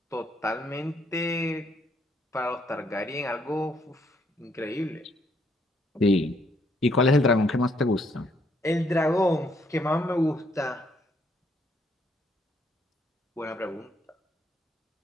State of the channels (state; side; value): normal; both; correlation 0.70